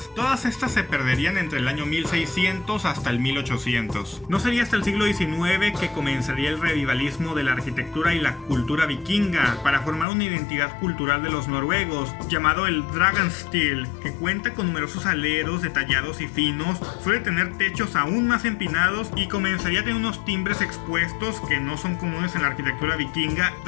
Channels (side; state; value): right; drops out; at 10.1 s